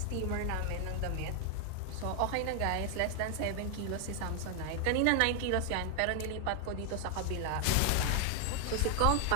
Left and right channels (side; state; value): both; different; correlation 0.00